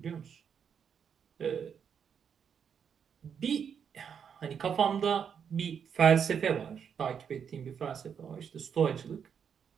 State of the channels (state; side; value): quieter; left; 7.4 dB